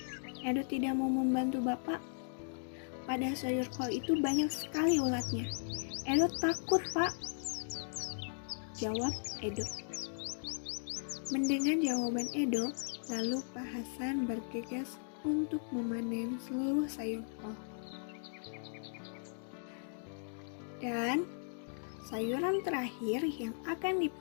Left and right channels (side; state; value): right; silent; digital silence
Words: Edo tidak mau membantu Bapak. Pada sayur kol itu banyak sekali ulatnya. Edo takut Pak, jawab Edo. Mendengar jawaban Edo, lalu Pak Hasan bergegas untuk memanen seluruh sayur kol. Dan sayuran terakhir yang akan